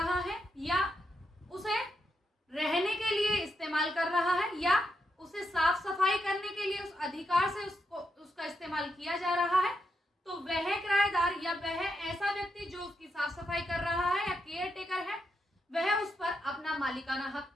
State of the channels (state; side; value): normal; both; correlation 0.83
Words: है या उसे रहने के लिए इस्तेमाल कर रहा है या उसे साफ सफाई करने के लिए उस अधिकार से उसका इस्तेमाल किया जा रहा है, तो वह किराएदार या वह ऐसा व्यक्ति जो उसकी साफ सफाई कर रहा है या केयर टेकर है, वह उस पर अपना मालिकाना हक